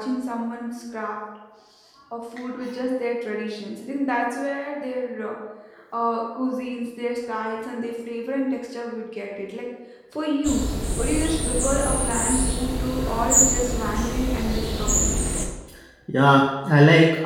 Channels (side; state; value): both; identical; correlation 1.00